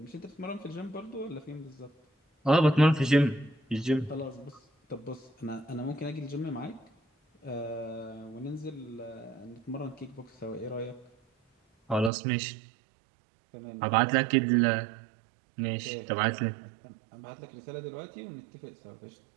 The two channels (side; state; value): left; drops out; at 12.1 s